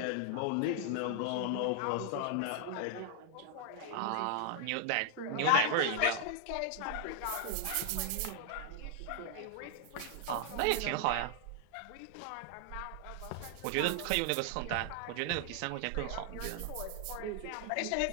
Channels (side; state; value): both; different; correlation 0.00